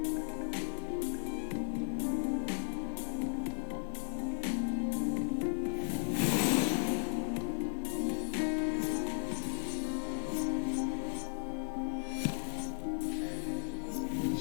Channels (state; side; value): silent; right; digital silence